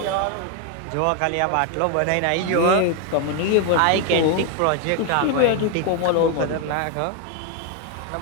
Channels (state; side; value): different; both; correlation 0.01